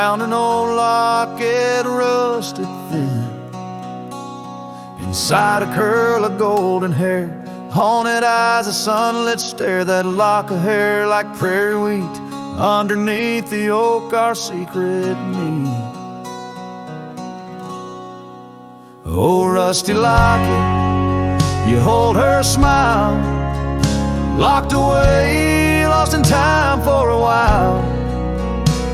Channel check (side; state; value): both; identical; correlation 1.00